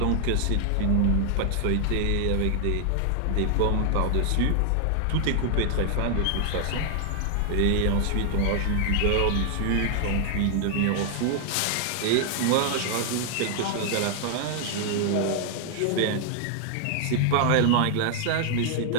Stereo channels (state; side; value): different; both; correlation 0.00